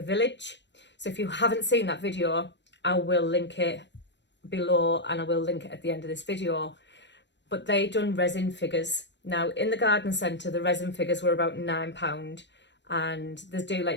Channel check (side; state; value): right; late; 0.52 ms